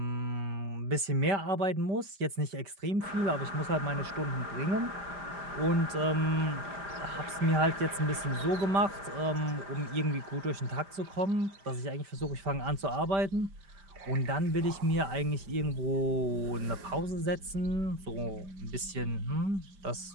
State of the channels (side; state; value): left; late; 5.0 ms